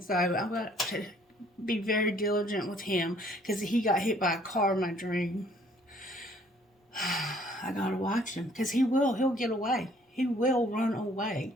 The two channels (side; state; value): both; normal; correlation 0.60